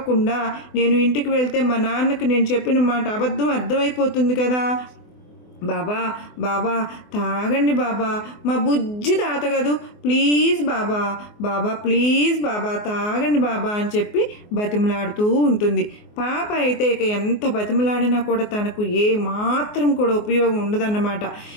నేను ఇంటికి వెళ్తే మా నాన్నకి నేను చెప్పిన మాట అబద్ధం అర్థమైపోతుంది కదా, బాబా బాబా తాగండి బాబా, మా బుజ్జి తాత కదూ, ప్లీజ్ బాబా, బాబా ప్లీజ్ బాబా తాగండి బాబా అని చెప్పి బతిమలాడుతూ ఉంటుంది. పాప అయితే ఇక ఎంత బతిమలాడినా కూడా తనకు ఏ మాత్రం కూడా ఉపయోగం ఉండదన్నమాట.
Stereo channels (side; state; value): right; late; 24 ms